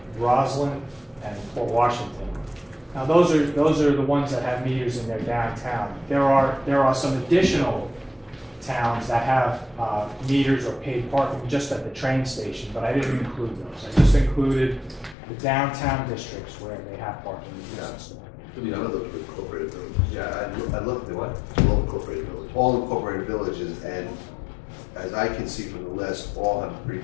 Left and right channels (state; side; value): drops out; right; at 15.2 s